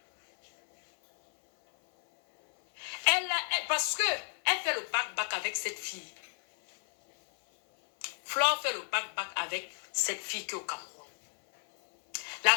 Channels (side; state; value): right; silent; 57 dB below the other